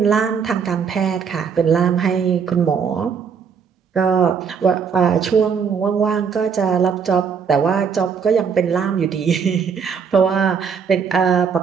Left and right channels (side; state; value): left; quieter; 6.4 dB